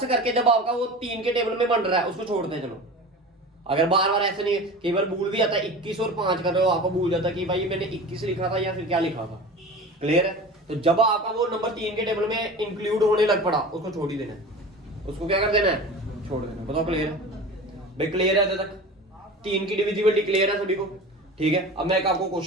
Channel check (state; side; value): normal; both; correlation 0.35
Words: करके जब आपका वो 3 के टेबल में बन रहा है उसको छोड़ दे। चलो अगर बार बार ऐसे नहीं, कई बार भूल भी जाता है, 21 और 5 कर रहे हो, आपको भूल जाता है कि भाई मैंने 21 लिखा था या फिर क्या लिखा था। क्लियर है। तो जब आपका वो नंबर 3 के टेबल में इंक्लूड होने लग पड़ा, उसको छोड़ ही देना है, उसको क्या कर देना है, छोड़ देना है। बताओ क्लियर है भाई, क्लियर है अभी तक, 3 की डिविजिबिलिटी क्लियर है सभी को। ठीक है, अब मैं एक आपको